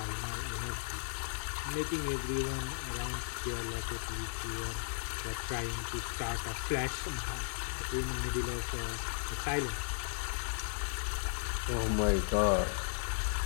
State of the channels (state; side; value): silent; right; 54 dB below the other